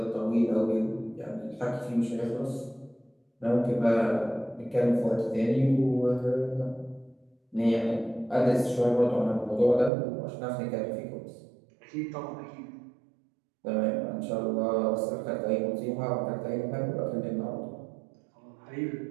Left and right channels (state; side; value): drops out; left; at 9.9 s